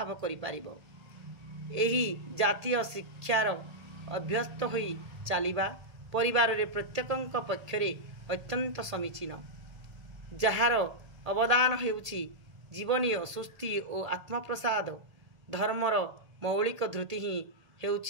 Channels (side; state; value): left; late; 1.8 ms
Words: करि पारिबो। एही जातीय शिक्षार अभ्यस्त होई चलिबा परिवार रे प्रत्येकंक पक्षरे अत्यंत समीचीन जार अवदान हेउछि जीवनीय सुस्ति और आत्मप्रसाद धर्मर मौलिक धृति ही